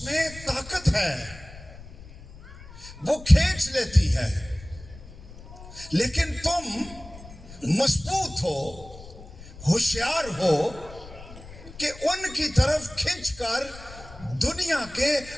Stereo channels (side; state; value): left; noise; rumble, 17 dB below the sound